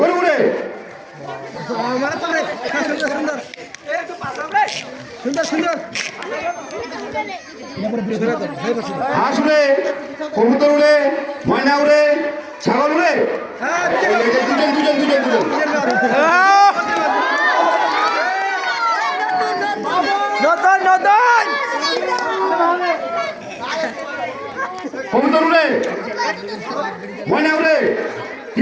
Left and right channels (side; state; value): both; identical; correlation 1.00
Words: উড়ে হাঁস উড়ে কবুতর উড়ে ময়না উড়ে ছাগল উড়ে দুজন নতুন নতুন কবুতর উড়ে, ময়না উড়ে,